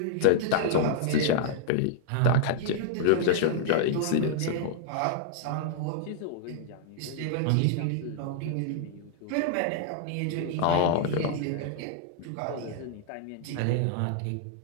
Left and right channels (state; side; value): different; both; correlation -0.01